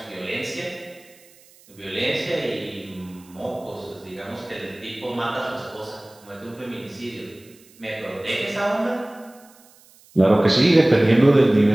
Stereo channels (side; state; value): right; noise; hiss, 27 dB below the sound